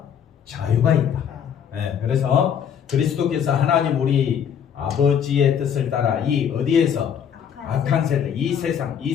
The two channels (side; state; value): right; quieter; 8.2 dB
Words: 자유가 있다. 네, 그래서 그리스도께서 하나님 우리 아버지의 뜻을 따라 이 어디에서 악한 세대, 이